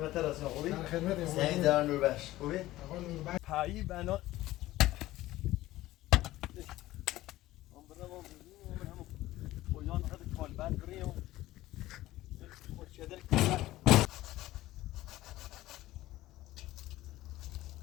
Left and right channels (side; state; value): right; quieter; 16.3 dB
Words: راستی خوبی؟ در خدمتم. زنگ در نوربخش خوبی؟ آقا نوربخش. پایی بنا پایان خود کالبد بریم خود شدر کالبد